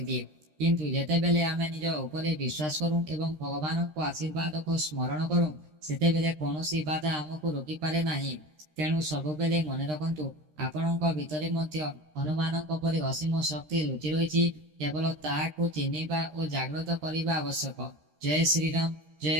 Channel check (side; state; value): left; late; 13 ms